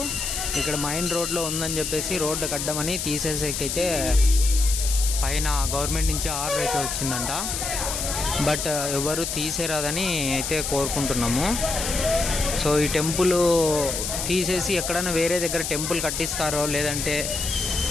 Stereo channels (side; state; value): left; noise; hiss, 3 dB below the sound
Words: ఇక్కడ మైన్ రోడ్లో ఉందని చెప్పేసి రోడ్డు కట్టమని తీసేసేకైతే పైన గవర్నమెంట్ నుంచి ఆర్డర్ అయితే వచ్చిందంట. బట్ ఎవరు తీసేరాదని అయితే కోరుకుంటున్నాము. సో ఈ టెంపుల్ తీసేసి ఎక్కడైనా వేరే దగ్గర టెంపుల్ కట్టిస్తారో లేదంటే